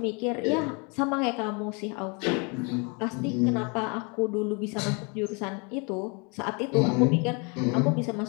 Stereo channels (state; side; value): quieter; right; 32.4 dB